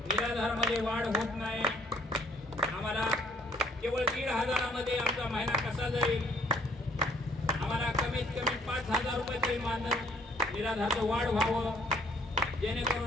निराधारमध्ये वाढ होत नाही। आम्हाला केवळ 1500 मध्ये आमचा महिना कसा जाईल? आम्हाला कमीत कमी 5000 रुपये तरी मानधन निराधारचं वाढ व्हावं,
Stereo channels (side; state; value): both; normal; correlation 0.62